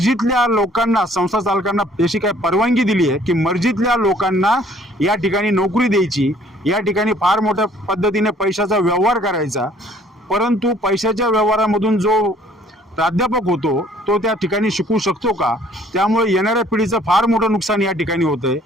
लोकांना, संस्था चालकांना अशी काय परवानगी दिली आहे की मर्जीतल्या लोकांना या ठिकाणी नोकरी द्यायची, या ठिकाणी फार मोठ्या पद्धतीने पैशाचा व्यवहार करायचा। परंतु पैशाच्या व्यवहारामधून जो प्राध्यापक होतो तो त्या ठिकाणी शिकू शकतो का? त्यामुळे येणाऱ्या पिढीचं फार मोठं नुकसान या ठिकाणी होतंय।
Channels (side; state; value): both; normal; correlation 0.58